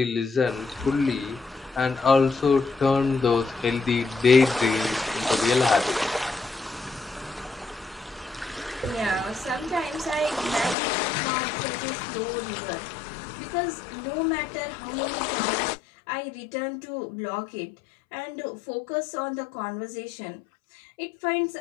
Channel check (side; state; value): right; drops out; at 10.8 s